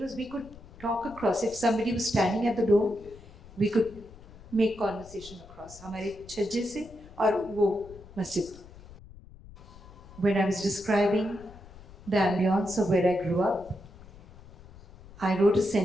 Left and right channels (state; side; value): noise; left; rumble, 19 dB below the sound